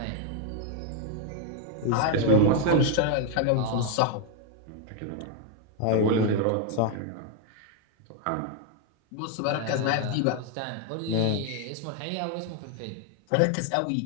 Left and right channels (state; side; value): different; both; correlation 0.01